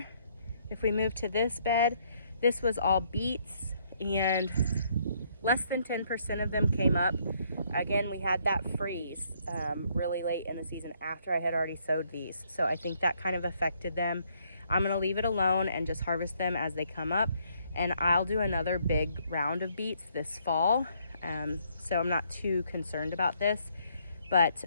If we move to this bed, this was all beets, and less than 10% of them came up. Again, we had that freeze really late in the season after I had already sowed these. So I think that kind of affected them. I'm gonna leave it alone and just harvest them as they come up. And I'll do another big round of beets this fall. So I'm not too concerned about this, but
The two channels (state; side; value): inverted; both; correlation -0.69